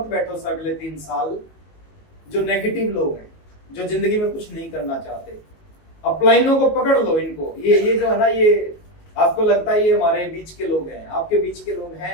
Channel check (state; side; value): late; right; 19 ms